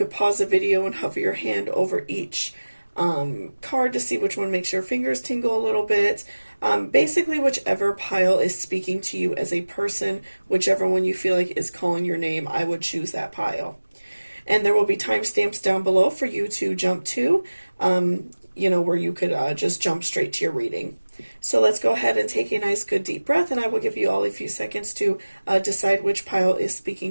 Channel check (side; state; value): both; inverted; correlation -1.00